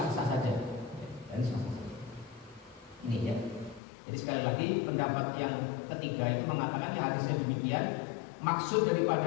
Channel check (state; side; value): drops out; right; at 3.8 s